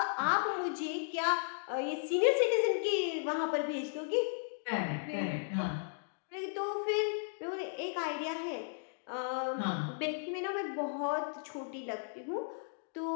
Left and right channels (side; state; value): right; silent; digital silence